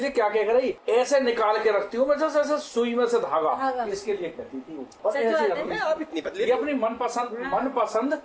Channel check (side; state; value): both; identical; correlation 1.00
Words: क्या क्या करेगी, ऐसे निकाल के रखती हूँ मैं, जैसे ऐसे सुई में से धागा, इसके लिए कहती थी वो। और ऐसे रखती। ये अपनी मनपसंद